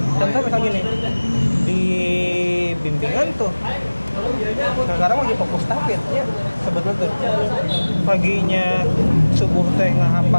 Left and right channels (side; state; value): both; inverted; correlation -1.00